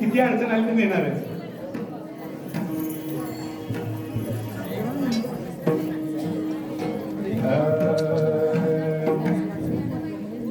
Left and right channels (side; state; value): both; identical; correlation 1.00